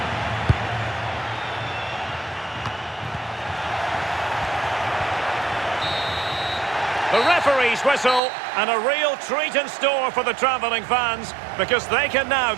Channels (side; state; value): left; drops out; at 8.2 s